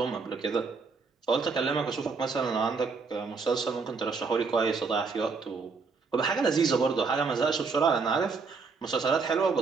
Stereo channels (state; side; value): quieter; left; 4.7 dB